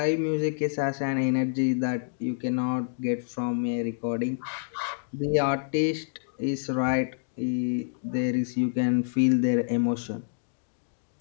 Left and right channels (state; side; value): silent; right; digital silence